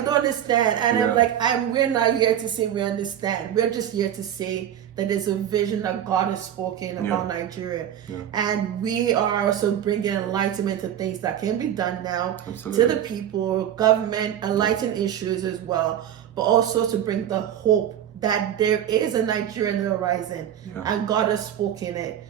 understand. And I'm like, we're not here to say we understand. We're just here to say that there's a vision that God has spoken about Nigeria, and we are also bringing enlightenment to things that can be done now to the people, government, enlighten issues as well, but also to bring the hope that there is a Nigerian horizon, and God has spoken it,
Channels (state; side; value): quieter; left; 10.4 dB